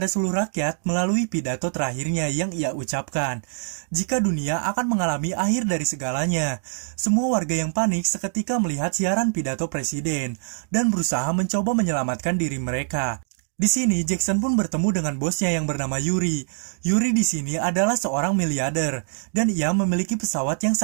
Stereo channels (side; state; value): left; silent; digital silence